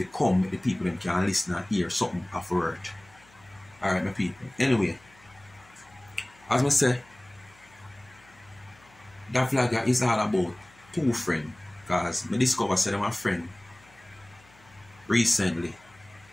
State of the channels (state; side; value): noise; left; hum, 28 dB below the sound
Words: come with the people that can listen and hear something of word. Alright, my people. Anyway, as I say, that vlog is all about 2 friends. Because I discovered that my friend recently.